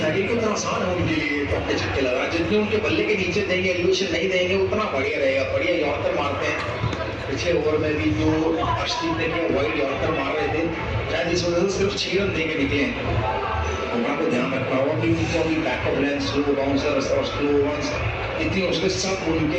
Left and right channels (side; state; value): both; identical; correlation 1.00